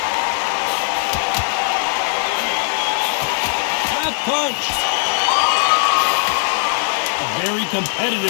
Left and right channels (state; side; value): silent; right; digital silence